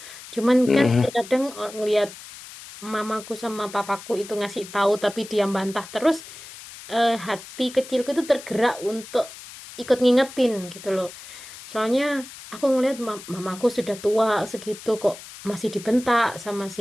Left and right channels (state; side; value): noise; left; hiss, 15 dB below the sound